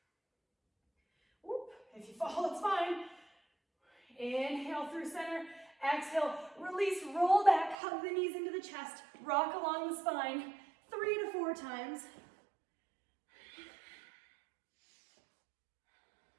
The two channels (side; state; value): left; drops out; at 7.8 s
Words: Whoop. If you fall, it's fine. Inhale through center. Exhale, release, roll back, hug the knees into the chest, rock along the spine 3 to 4 times.